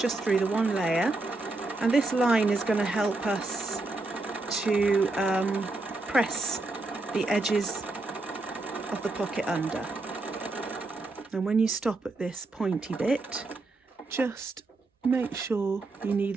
through the one layer. And this line is going to help us to press the edges of the pocket under. And when you stop at this pointy bit, just make sure you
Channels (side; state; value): left; quieter; 3.1 dB